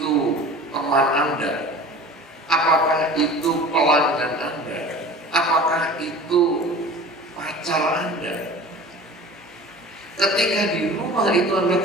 teman Anda, apakah itu pelanggan Anda, apakah itu pacar Anda, ketika di rumah itu Anda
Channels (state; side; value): normal; both; correlation 0.40